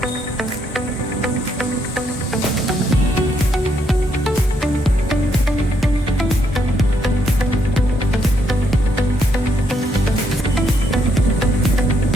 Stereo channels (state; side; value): normal; both; correlation 0.74